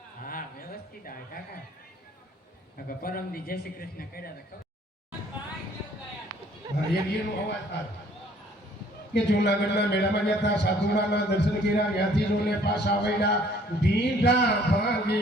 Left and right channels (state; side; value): normal; both; correlation 0.58